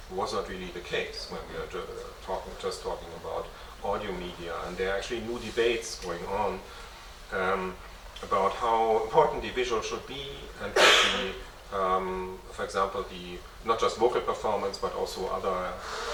was not really the case when we are just talking about audio media. And there are actually new debates going on about how important the visual should be, and for example, not just vocal performance, but also other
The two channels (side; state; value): both; identical; correlation 1.00